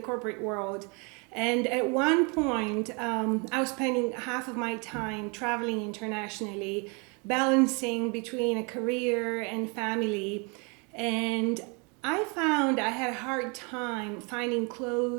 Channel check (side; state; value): left; quieter; 32.4 dB